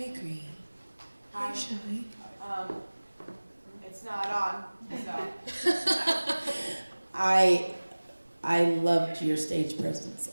Green. Hi, Shy. It's not on, so. I loved your stage presence,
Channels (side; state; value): both; inverted; correlation -1.00